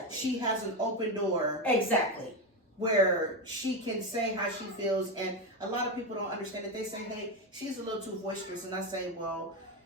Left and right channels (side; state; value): both; normal; correlation 0.13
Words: she has an open door Exactly. where she can say how she feels. And a lot of people don't understand it. They say, "Hey, she's a little too boisterous." And I say, well,